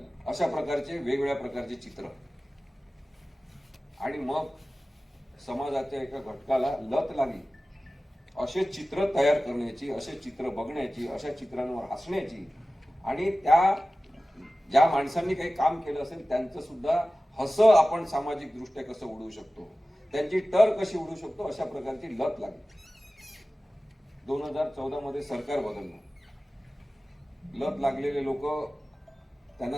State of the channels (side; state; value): both; normal; correlation 0.96